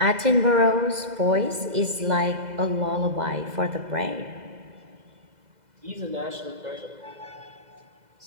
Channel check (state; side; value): late; left; 2.0 ms